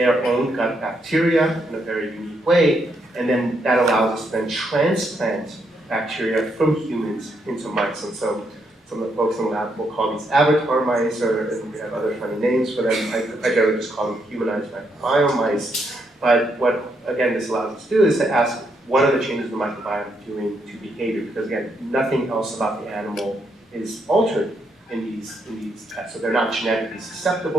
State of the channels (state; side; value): normal; both; correlation 0.77